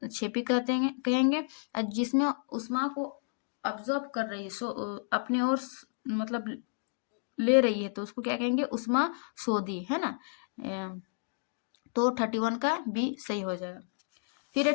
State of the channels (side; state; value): right; silent; digital silence